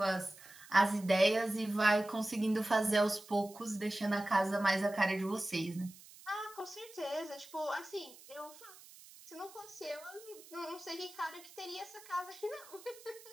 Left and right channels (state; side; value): noise; right; hiss, 20 dB below the sound